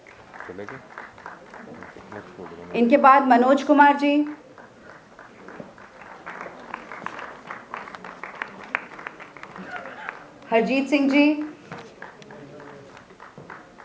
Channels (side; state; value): both; identical; correlation 1.00